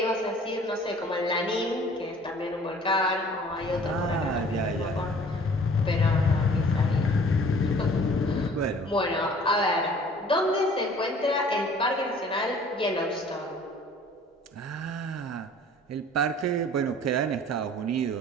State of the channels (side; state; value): both; normal; correlation 0.51